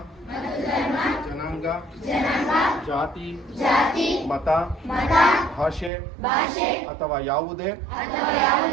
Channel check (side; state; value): left; drops out; at 5.9 s